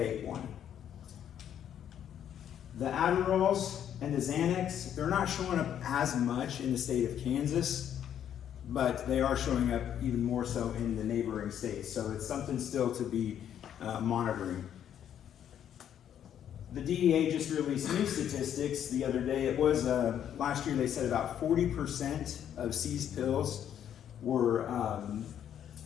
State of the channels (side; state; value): right; quieter; 9.7 dB